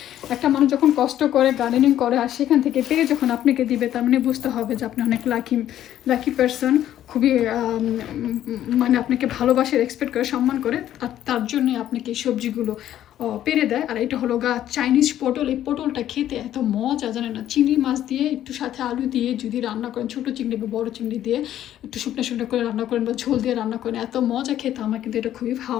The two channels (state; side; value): quieter; right; 11.8 dB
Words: একটা মানুষ যখন কষ্ট করে গার্ডেনিং করে আর সেখান থেকে পেরে যখন আপনাকে দিবে, তার মানে বুঝতে হবে যে আপনি অনেক লাকি পারসন। খুবই মানে আপনাকে ভালোবাসে, এক্সপেক্ট করে, সম্মান করে, আর তার জন্যে আপনাকে এই সবজিগুলো পেরে দেয়। আর এটা হলো চাইনিজ পটল। এই পটলটা খেতে এত মজা জানে না। চিংড়ি মাছ দিয়ে একটু সাথে আলু দিয়ে যদি রান্না করেন, ছোটো চিংড়ি বা বড়ো চিংড়ি দিয়ে একটু শুকনো করে রান্না করেন বা ঝোল দিয়ে রান্না করেন, এত মজা খেতে। আমার কিন্তু এটা খুবই